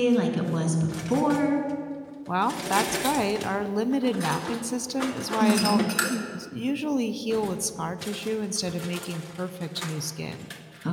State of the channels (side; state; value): both; identical; correlation 1.00